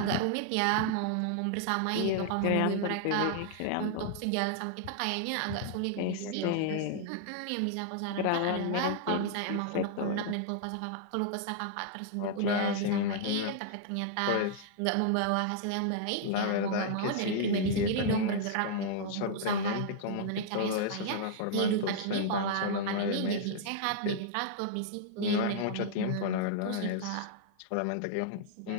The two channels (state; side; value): different; both; correlation -0.01